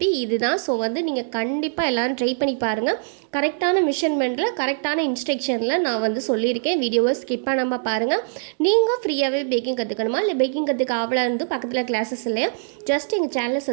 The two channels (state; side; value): silent; left; digital silence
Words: இதுதான். ஸோ வந்து நீங்கள் கண்டிப்பாக எல்லோரும் ட்ரை பண்ணி பாருங்கள். கரெக்டான மெஷர்மெண்ட்டில் கரெக்டான இன்ஸ்ட்ரக்ஷனில் நான் வந்து சொல்லியிருக்கேன். வீடியோவை ஸ்கிப் பண்ணாமல் பாருங்கள். நீங்கள் ஃப்ரீயாகவே பேக்கிங் கற்றுக்கணுமா, இல்லை பேக்கிங் கற்றுக்க ஆவலாக இருந்து பக்கத்தில் கிளாஸஸ் இல்லையா, ஜஸ்ட் எங்கள் சேனலை